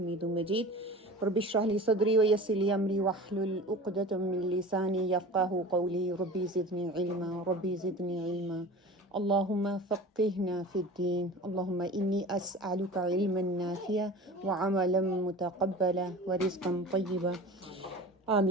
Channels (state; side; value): normal; both; correlation 0.37